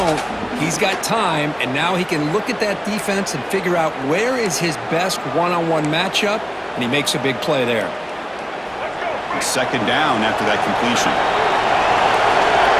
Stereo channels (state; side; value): identical; both; correlation 1.00